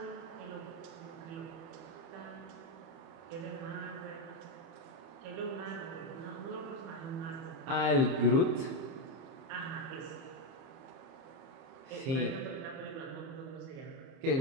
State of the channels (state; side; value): late; left; 30 ms